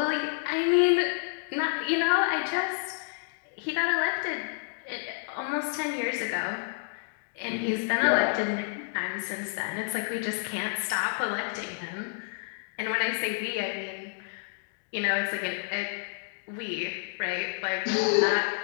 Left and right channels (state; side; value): silent; right; digital silence